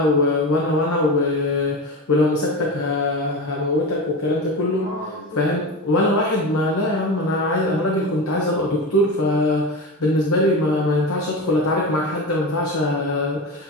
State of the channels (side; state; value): both; normal; correlation 0.25